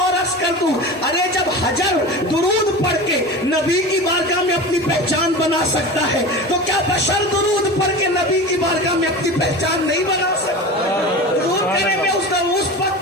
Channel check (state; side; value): normal; both; correlation 0.31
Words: اور عرض کر دوں، ارے جب حجر درود پڑھ کے نبی کی بارگاہ میں اپنی پہچان بنا سکتا ہے تو کیا بشر درود پڑھ کے نبی کی بارگاہ میں اپنی پہچان نہیں بنا سکتا؟ درود کرنے میں اس